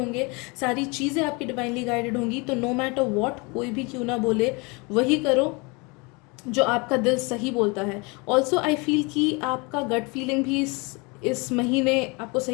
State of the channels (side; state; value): right; quieter; 28.6 dB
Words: सारी चीज़ें आपकी डिवाइनली गाइडेड होंगी। तो नो मैटर व्हाट कोई भी क्यों ना बोले, वही करो जो आपका दिल सही बोलता है। ऑल्सो आई फील कि आपका गट फीलिंग भी इस महीने आपको